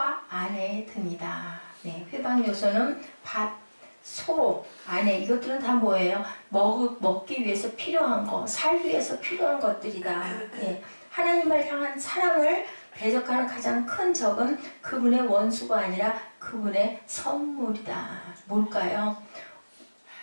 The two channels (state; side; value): inverted; both; correlation -1.00